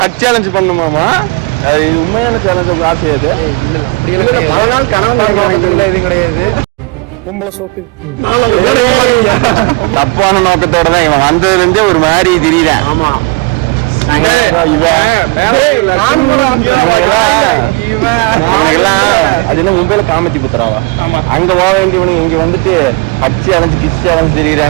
ஹக் சேலஞ்ச் பண்ணுமாமா? இது உண்மையான சேலஞ்ச் ஆசை அது. இல்ல அப்படியே பல நாள் கனவு எதுவும் கிடையாது. தப்பான நோக்கத்தோட தான் இவன் வந்ததுல இருந்தே ஒரு மாதிரி திடீரன். ஆமா மும்பைல காமத்தி புத்துறாவா அங்க போக வேண்டியவனுங்க இங்க வந்துட்டு அச்சு அலைஞ்சு கிச்சு அலைஞ்சு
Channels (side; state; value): left; quieter; 26.3 dB